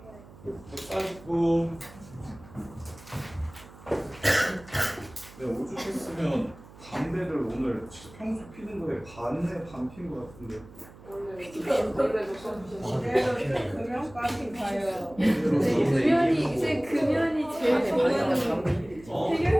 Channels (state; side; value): noise; right; hum, 20 dB below the sound